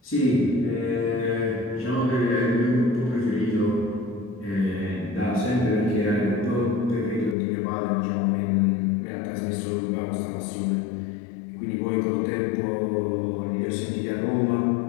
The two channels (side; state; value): right; drops out; at 7.4 s